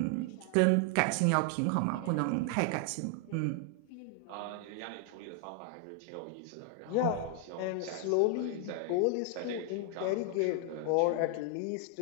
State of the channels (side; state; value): both; different; correlation 0.00